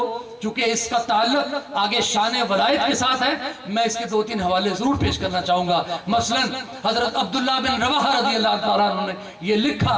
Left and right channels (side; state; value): both; identical; correlation 1.00